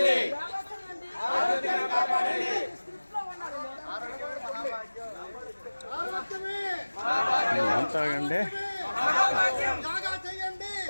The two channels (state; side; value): inverted; both; correlation -1.00